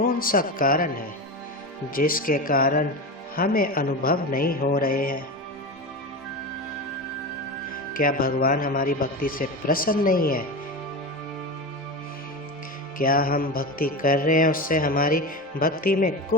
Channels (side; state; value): both; normal; correlation 0.22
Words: सा कारण है जिसके कारण हमें अनुभव नहीं हो रहे हैं? क्या भगवान हमारी भक्ति से प्रसन्न नहीं है? क्या हम भक्ति कर रहे हैं, उससे हमारी भक्ति में